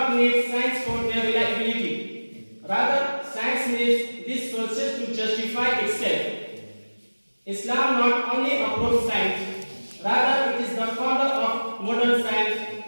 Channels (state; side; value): inverted; both; correlation -1.00